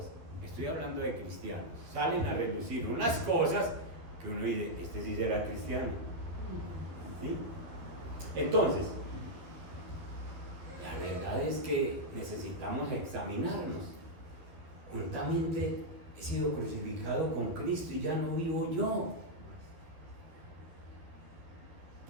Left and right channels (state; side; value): late; left; 12 ms